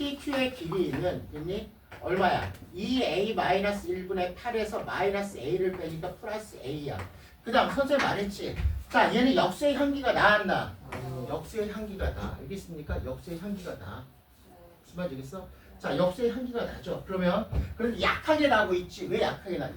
길이는 됐니? 얼마야? 2a-1분의 8에서 마이너스 a를 빼니까 플러스 a야. 그 다음 선생님 말했지? 자, 얘는 역수의 향기가 나왔나? 역수의 향기가 나. 알겠습니까? 역수의 향기가 나. 무슨 말인지 알겠어? 자, 역수의 향기가 나죠. 그러면 약하게 나고 있지. 왜 약하게 나?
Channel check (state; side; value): identical; both; correlation 1.00